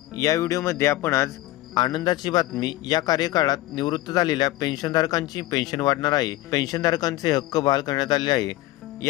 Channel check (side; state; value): right; quieter; 16.8 dB